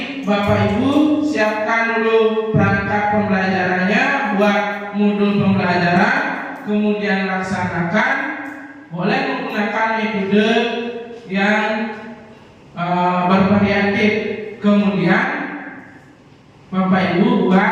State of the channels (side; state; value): both; identical; correlation 1.00